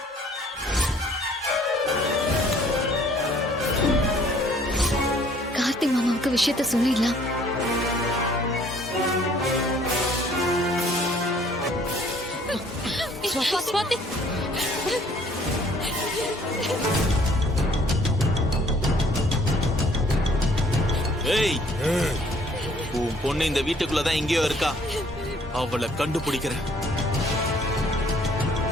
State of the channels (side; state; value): both; normal; correlation 0.59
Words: கார்த்திக் மாமாவுக்கு விஷயத்த சொல்லிடலாம். சுவாதி ஏய், உன் பொண்ணு இந்த வீட்டுக்குள்ளதான் எங்கேயோ இருக்கா. அவளை கண்டுபிடிக்கிறேன்.